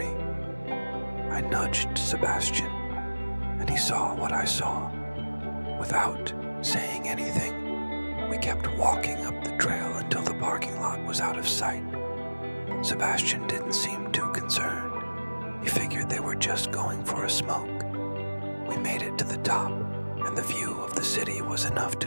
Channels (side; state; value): both; inverted; correlation -1.00